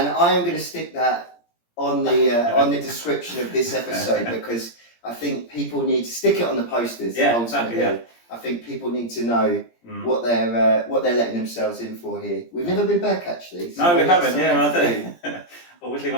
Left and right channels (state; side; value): late; right; 17 ms